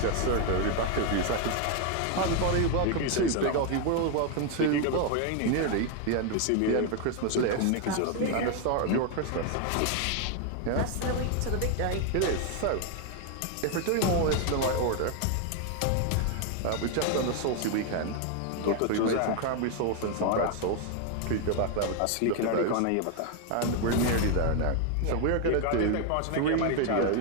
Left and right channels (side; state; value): both; different; correlation 0.01